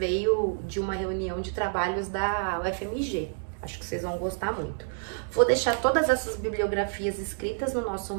de uma reunião de trabalhos da UFMG. Acho que vocês vão gostar muito. Vou deixar todas essas bibliografias escritas no nosso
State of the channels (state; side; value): silent; left; digital silence